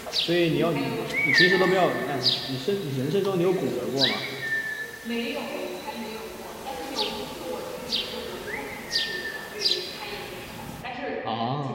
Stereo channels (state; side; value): identical; both; correlation 1.00